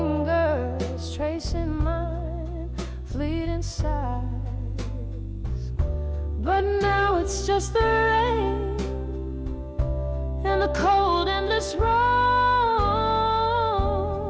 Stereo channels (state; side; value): identical; both; correlation 1.00